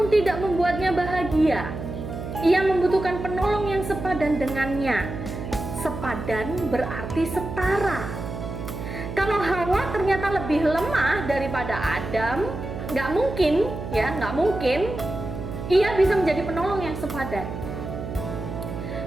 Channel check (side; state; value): right; noise; hum, 7 dB below the sound